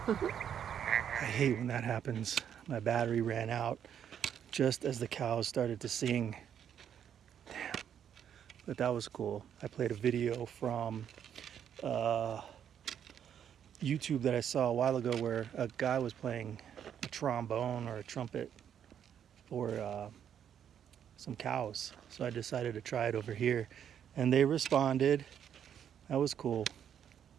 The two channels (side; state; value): left; quieter; 9.0 dB